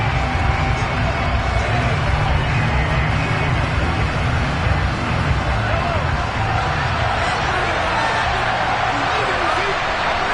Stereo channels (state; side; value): identical; both; correlation 1.00